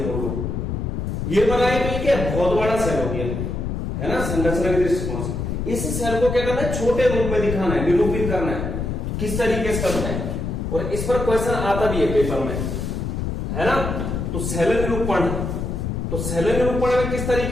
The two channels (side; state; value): left; noise; rumble, 3 dB below the sound